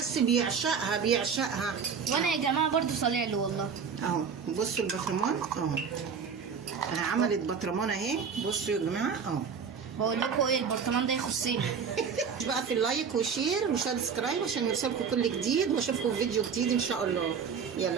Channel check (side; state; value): left; quieter; 6.3 dB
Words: بيعشقها. وانا يا جماعه برضو صالع له والله اهو. بصوا البطرمان اهو، عملت بطرمان اهي، بصوا يا جماعه اهو. بقول لكم ايه، البرطمان ده يخصني. بقى في اللايك وشير وسبسكرايب عشان يوصلكم كل جديد، واشوفكم في فيديو جديد ان شاء الله.